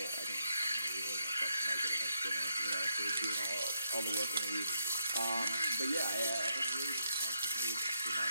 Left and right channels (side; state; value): both; inverted; correlation -0.78